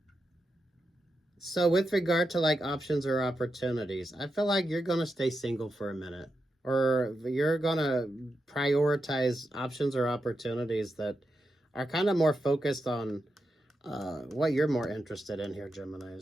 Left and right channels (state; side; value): normal; both; correlation 0.87